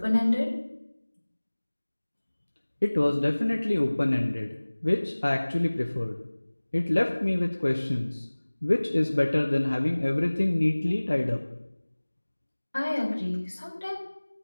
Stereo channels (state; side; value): inverted; both; correlation -1.00